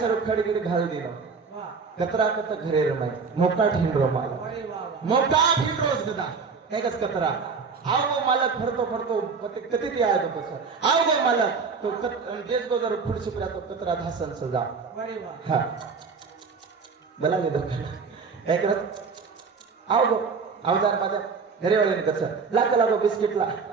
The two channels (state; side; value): quieter; left; 5.1 dB